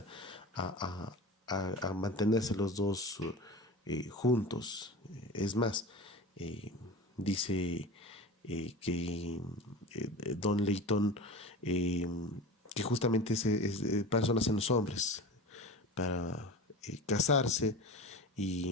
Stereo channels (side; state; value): both; normal; correlation 0.32